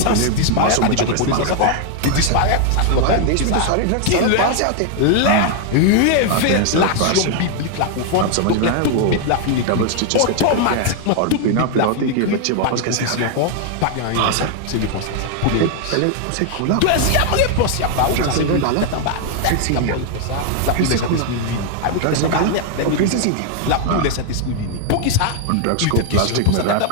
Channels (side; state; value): both; different; correlation 0.00